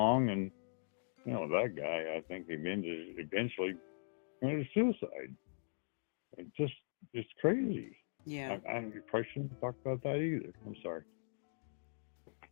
and that guy, I think, eventually committed suicide. It's crazy. Yeah, I probably shouldn't talk about that either. I'm sorry.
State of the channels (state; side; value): silent; right; digital silence